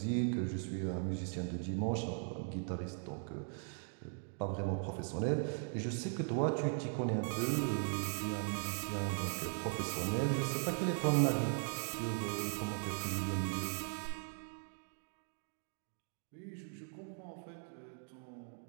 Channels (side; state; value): left; silent; 52 dB below the other